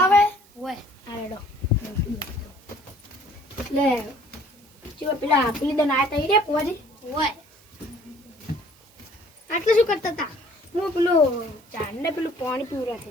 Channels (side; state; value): right; noise; hiss, 28 dB below the sound